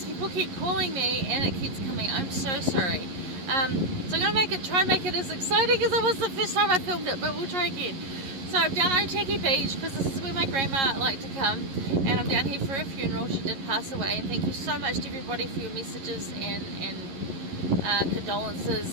people keep calling me and it keeps coming. I'm so sorry. So I'm going to try and make it as exciting as it was the first time I filmed it, but we'll try again. So I'm down at Otaki Beach because this is where my grandma liked to come, and I'm down here for a funeral. She did pass away, and thank you so much to everybody for your messages and condolences,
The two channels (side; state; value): left; late; 11 ms